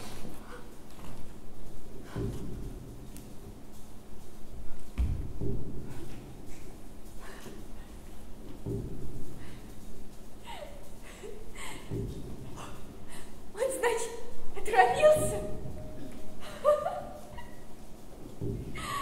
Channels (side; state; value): both; identical; correlation 1.00